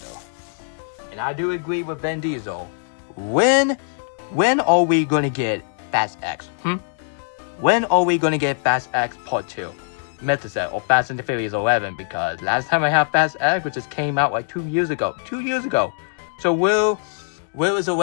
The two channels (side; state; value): right; silent; digital silence